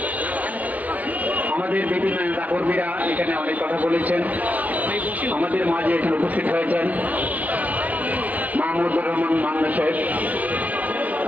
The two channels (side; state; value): left; late; 0.072 ms